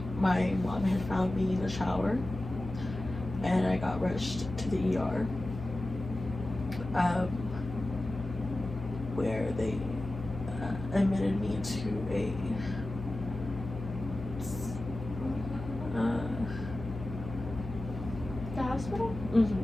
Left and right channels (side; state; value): left; noise; hum, 9 dB below the sound